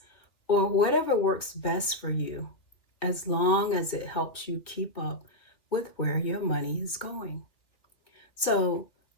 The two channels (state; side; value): late; right; 2.7 ms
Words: or whatever works best for you, as long as it helps you keep up with where your money is going. So,